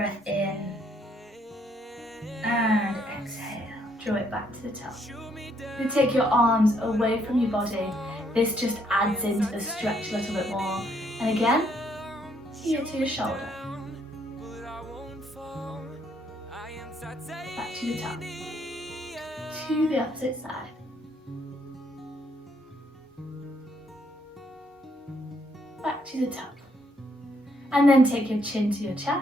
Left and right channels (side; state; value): both; normal; correlation 0.70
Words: in and exhale. Draw it back to the top. You take your arms away from your body. This just adds into the stretch a little bit more. And again, here to your shoulder. Back to the top. To the opposite side. Back to the top. And then take your chin to your